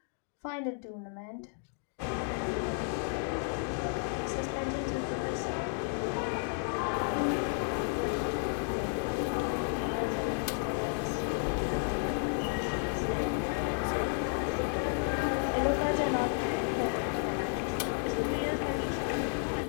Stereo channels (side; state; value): right; silent; 56 dB below the other